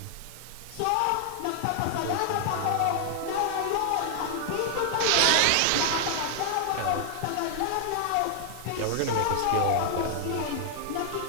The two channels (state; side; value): different; both; correlation 0.00